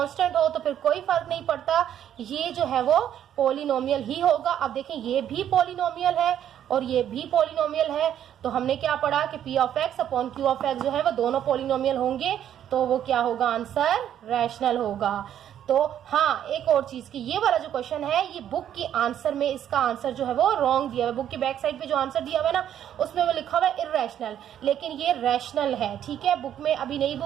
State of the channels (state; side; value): quieter; left; 10.3 dB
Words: हो तो फिर कोई फर्क नहीं पड़ता, ये जो है वो पॉलिनोमियल ही होगा। अब देखें ये भी पॉलिनोमियल है और ये भी पॉलिनोमियल है, तो हमने क्या पढ़ा कि p of x upon q of x जो है वो दोनों पॉलिनोमियल होंगे, तो वो क्या होगा, आंसर रैशनल होगा। तो हाँ, एक और चीज की ये वाला जो क्वेश्चन है ये बुक के आंसर में इसका आंसर जो है वो रॉन्ग दिया हुआ है। बुक की बैक साइड पे जो आंसर दिया हुआ है ना उसमें वो लिखा हुआ है इर्रेशनल, लेकिन ये रैशनल है। ठीक है, बुक में अभी नई